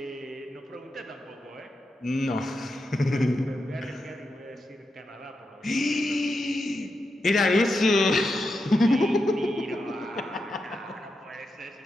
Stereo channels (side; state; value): both; normal; correlation 0.86